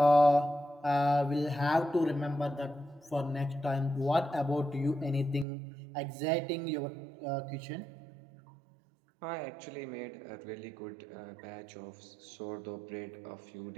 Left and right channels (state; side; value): drops out; left; at 5.5 s